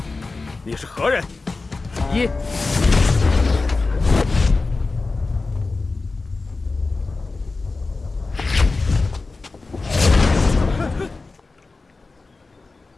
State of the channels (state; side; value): quieter; right; 3.7 dB